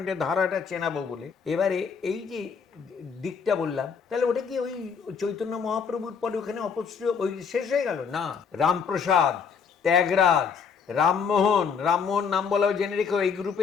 এটা ধারাটা চেনাবো বলে। এবারে এই যে দিকটা বললাম, তাহলে ওটা কি ওই চৈতন্য মহাপ্রভুর পরে ওখানে অপশ্রয় ওই শেষ হয়ে গেল? না, রামপ্রসাদ, ত্যাগরাজ, রামমোহন, রামমোহন নাম বলাও জেনে রেখো এই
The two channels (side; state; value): right; quieter; 6.2 dB